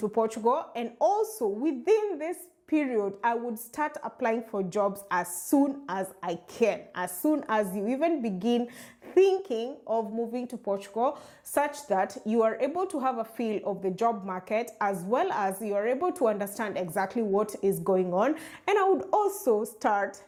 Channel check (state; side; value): identical; both; correlation 1.00